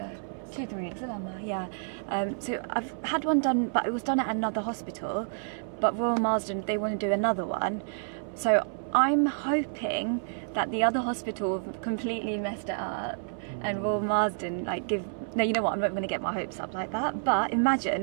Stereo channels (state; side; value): silent; left; 58 dB below the other